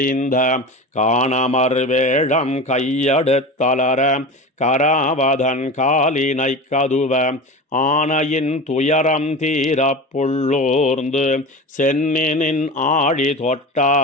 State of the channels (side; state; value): both; normal; correlation 0.30